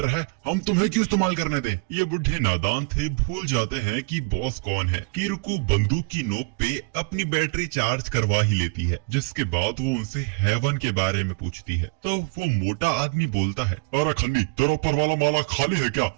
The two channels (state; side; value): quieter; left; 31.1 dB